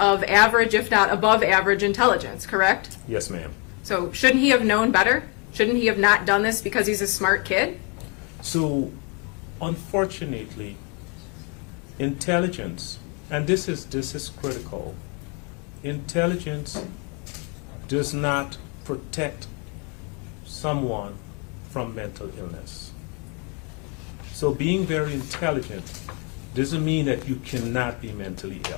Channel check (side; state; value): right; quieter; 34.2 dB